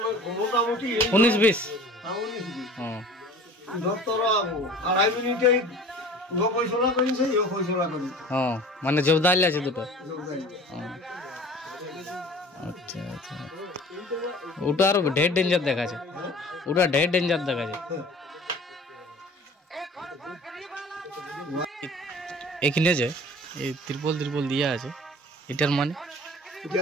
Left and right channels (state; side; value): normal; both; correlation 0.44